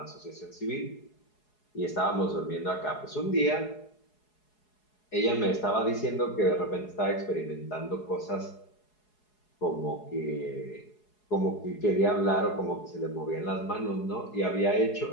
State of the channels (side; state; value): right; late; 4.7 ms